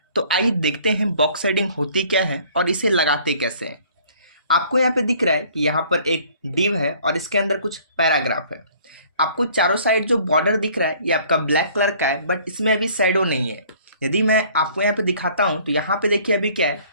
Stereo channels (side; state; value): both; inverted; correlation -0.55